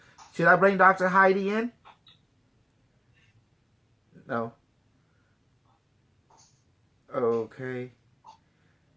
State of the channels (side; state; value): both; identical; correlation 1.00